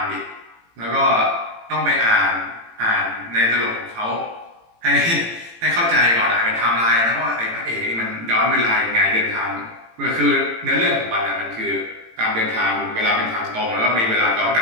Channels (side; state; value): left; late; 18 ms